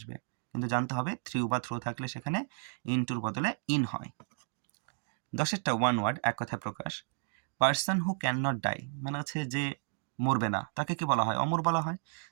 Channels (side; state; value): left; silent; 56 dB below the other